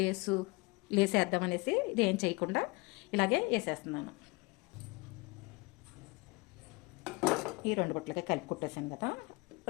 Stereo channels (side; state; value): right; quieter; 25.3 dB